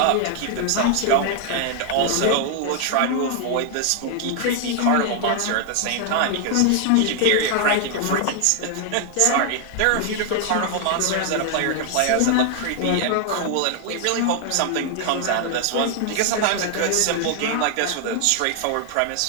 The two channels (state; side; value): different; both; correlation 0.00